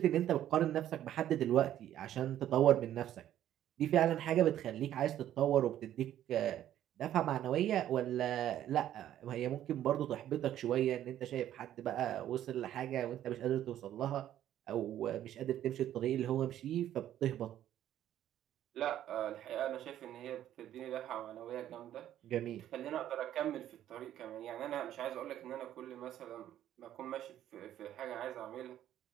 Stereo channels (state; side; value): quieter; left; 11.8 dB